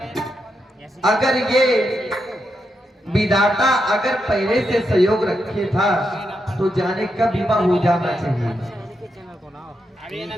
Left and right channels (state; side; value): normal; both; correlation 0.84